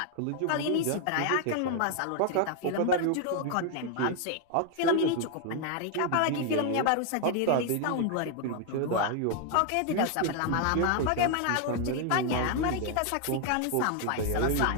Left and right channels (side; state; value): both; different; correlation 0.00